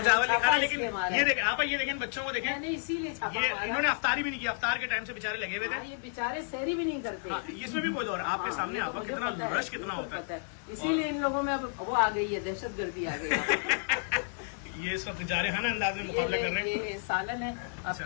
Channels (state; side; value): silent; right; 57 dB below the other